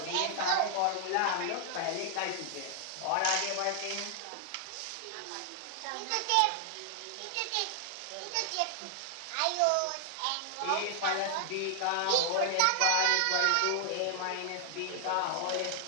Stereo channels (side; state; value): both; different; correlation 0.00